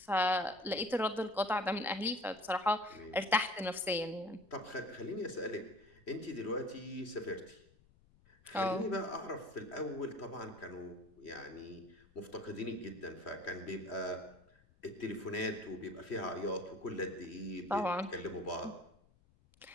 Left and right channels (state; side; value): noise; left; rumble, 29 dB below the sound